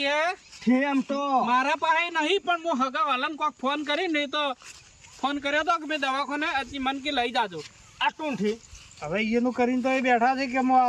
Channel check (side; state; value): both; identical; correlation 1.00